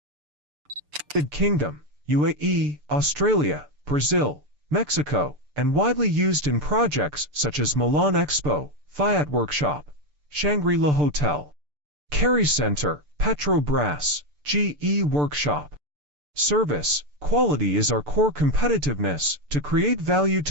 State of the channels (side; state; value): left; late; 6.8 ms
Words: United Kingdom, UAE, Australia, Brazil, Mexico, and widely used in projects such as Milan Expo, Fiat Workshop, Shangri-La Hotel, Kerry Center, Petrobras, GE Workshop. Service, quality is our core competitiveness. To create value